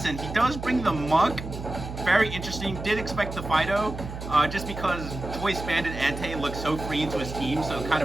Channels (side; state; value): right; noise; hum, 9 dB below the sound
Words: He does bring the Muck. Very interesting. Did expect the Fido, just because Choice Bandit Ante looks so free into his team, so it kind